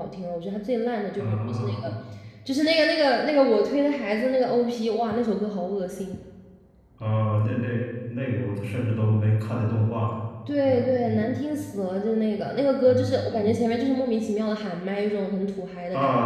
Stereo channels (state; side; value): identical; both; correlation 1.00